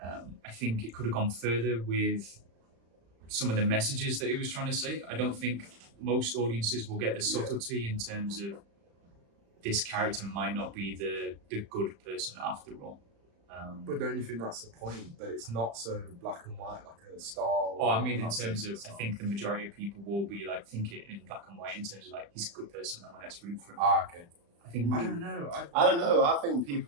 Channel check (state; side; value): late; left; 35 ms